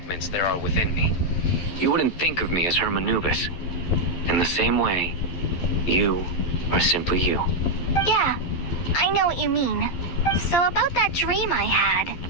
there are within me, you wouldn't think of me as Hermanubis. In the same way, you are simply you. Yeah, I know what you mean. So about that dream I had,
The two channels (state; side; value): late; right; 12 ms